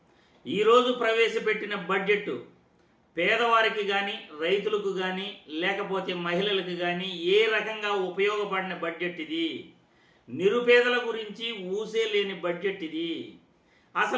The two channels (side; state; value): both; identical; correlation 1.00